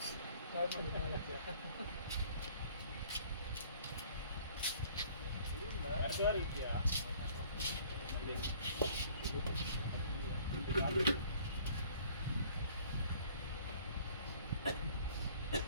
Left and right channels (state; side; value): inverted; both; correlation -0.54